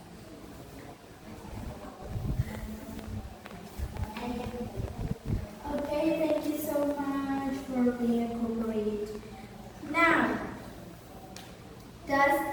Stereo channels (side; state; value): both; identical; correlation 1.00